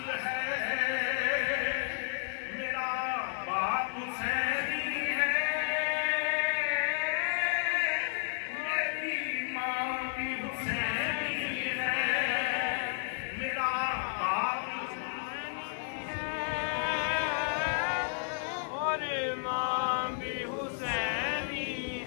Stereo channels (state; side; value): silent; right; digital silence